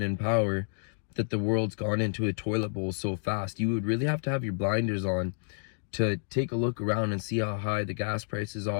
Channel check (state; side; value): silent; right; digital silence